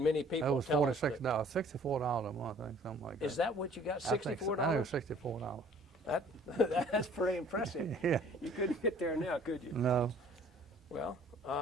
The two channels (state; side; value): normal; both; correlation 0.55